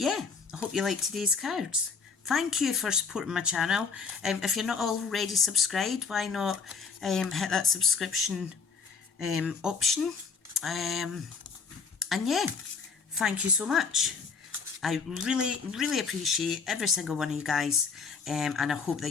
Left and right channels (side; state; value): right; quieter; 5.3 dB